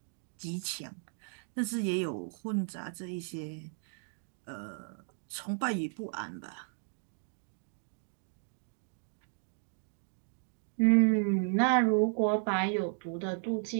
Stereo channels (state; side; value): silent; left; 55 dB below the other